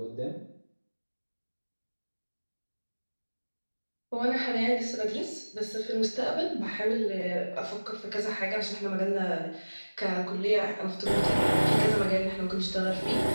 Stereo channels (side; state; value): both; inverted; correlation -1.00